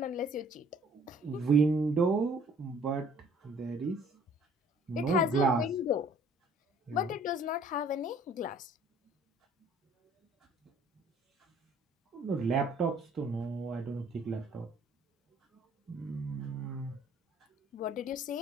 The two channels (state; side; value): normal; both; correlation 0.56